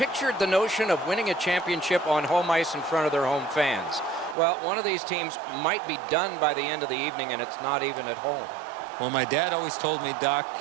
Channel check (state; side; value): drops out; left; at 4.4 s